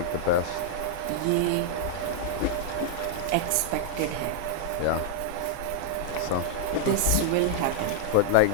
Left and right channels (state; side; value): different; both; correlation -0.01